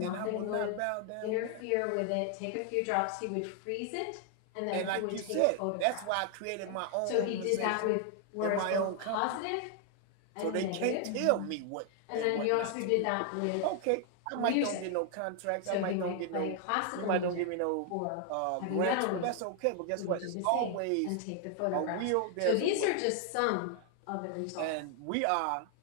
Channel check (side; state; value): both; different; correlation 0.00